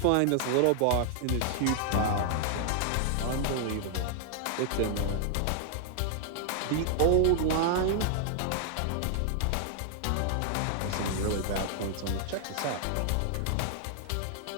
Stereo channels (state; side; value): different; both; correlation 0.00